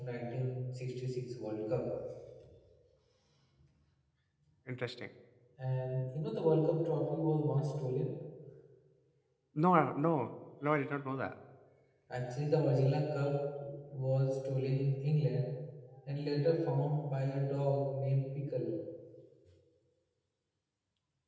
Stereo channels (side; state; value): both; identical; correlation 1.00